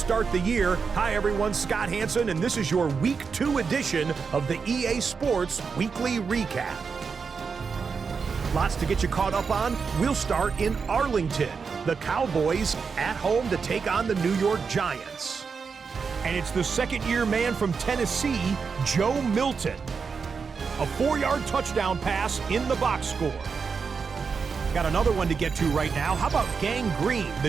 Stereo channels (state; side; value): quieter; left; 5.5 dB